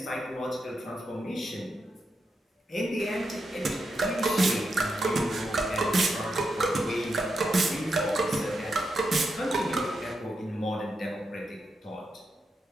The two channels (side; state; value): both; normal; correlation 0.85